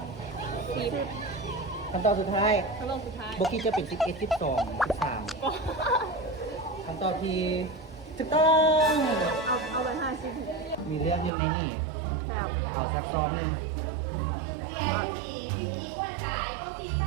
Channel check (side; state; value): left; drops out; at 11.3 s